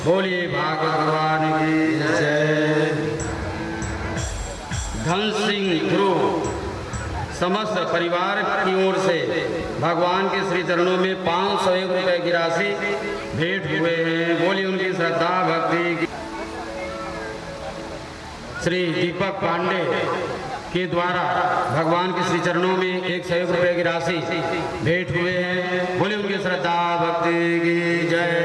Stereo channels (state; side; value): identical; both; correlation 1.00